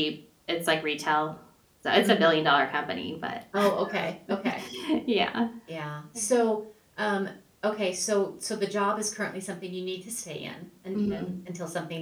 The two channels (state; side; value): identical; both; correlation 1.00